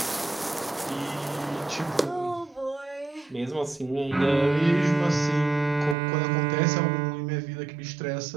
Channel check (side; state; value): left; drops out; at 6.0 s